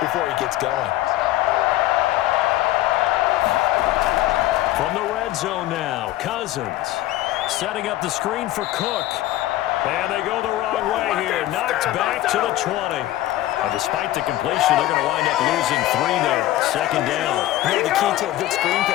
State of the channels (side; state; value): right; quieter; 15.2 dB